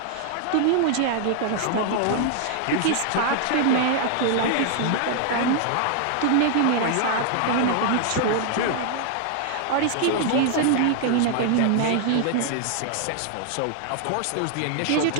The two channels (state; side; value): different; both; correlation 0.00